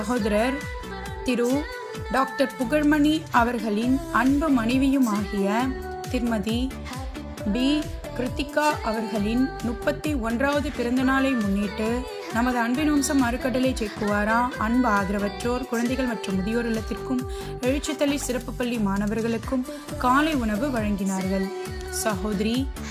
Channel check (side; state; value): both; identical; correlation 1.00